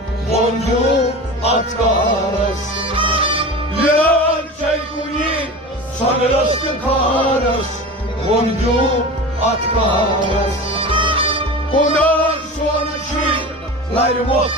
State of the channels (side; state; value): both; normal; correlation 0.32